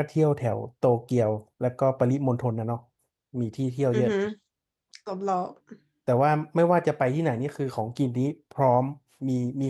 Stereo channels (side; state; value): both; identical; correlation 1.00